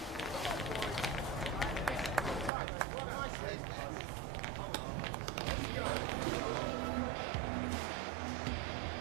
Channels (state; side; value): drops out; left; at 2.5 s